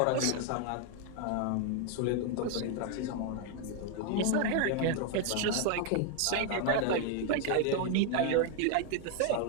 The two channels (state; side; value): different; both; correlation 0.01